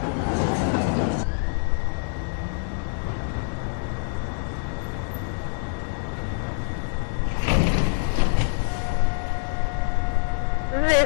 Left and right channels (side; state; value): right; silent; 62 dB below the other